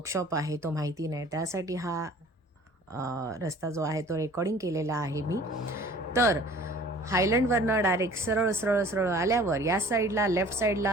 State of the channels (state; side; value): normal; both; correlation 0.48